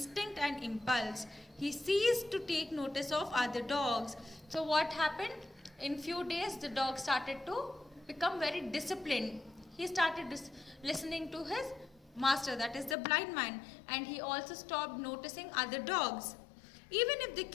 and impulse. He ceased to take notice of other dogs. So what happened? In few days, the dog started to become very disciplined. He started listening to his master, that is the blind man, and he also stopped noticing other dogs. Even if they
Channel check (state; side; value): drops out; right; at 13.0 s